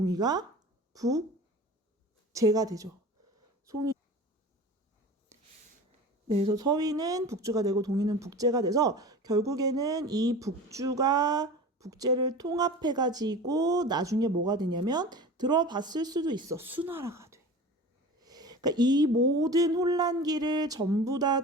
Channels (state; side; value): normal; both; correlation 0.36